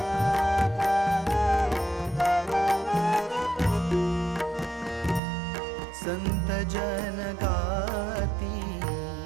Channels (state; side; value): drops out; left; at 5.2 s